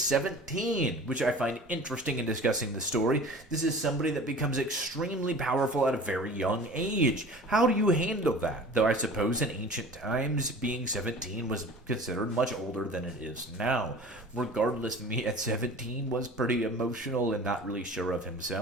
which I find interesting in discussing the story. This is somebody that becomes extremely powerful at a very young age. How do you handle that? Though I suppose in ancient times, being 17 was considered much older than it is now. Regardless, me at 17 was pretty emotional and not really sure of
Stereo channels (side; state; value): both; normal; correlation 0.41